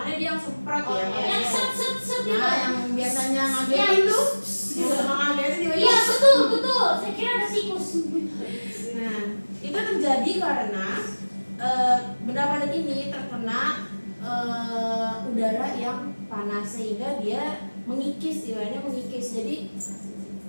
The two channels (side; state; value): both; inverted; correlation -1.00